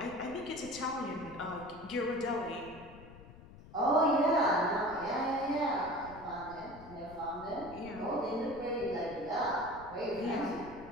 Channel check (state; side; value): noise; left; rumble, 18 dB below the sound